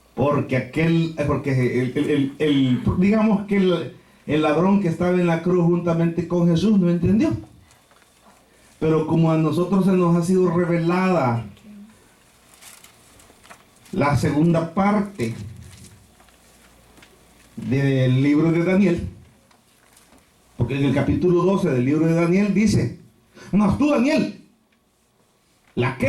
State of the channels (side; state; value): both; identical; correlation 1.00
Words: Porque digamos que el ladrón que estaba en la cruz juntamente con Jesús no entendió. Pero como a nosotros se nos ha sido revelada la segunda parte del libro de Daniel, porque en el capítulo 12 del libro de Daniel dice: mas tú, Daniel,